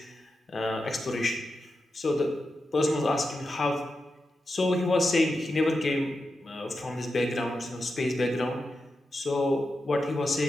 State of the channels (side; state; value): both; normal; correlation 0.89